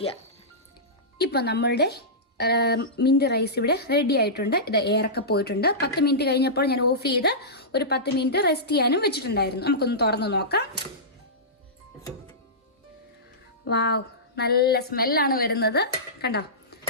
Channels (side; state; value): both; normal; correlation -0.17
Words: ഇപ്പം നമ്മളുടെ മിന്റ് റൈസ് ഇവിടെ റെഡി ആയിട്ടുണ്ട്. ഇത് എയറൊക്കെ പോയിട്ടുണ്ട്. 10 മിനിറ്റ് കഴിഞ്ഞപ്പോൾ ഞാൻ ഓഫ് ചെയ്ത് ഒരു 10 മിനിറ്റ് റെസ്റ്റ് ചെയ്യാനും വെച്ചിട്ടുണ്ടായിരുന്നു. നമുക്കൊന്ന് തുറന്ന് നോക്കാം. വാവ്, നല്ല സ്മെല്ലാണ് വരുന്നത്. കണ്ടോ,